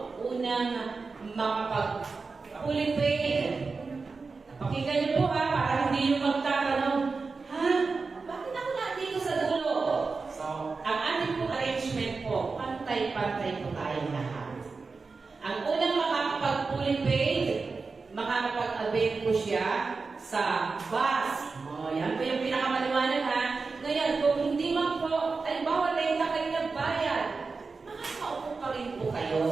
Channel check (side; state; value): left; quieter; 4.3 dB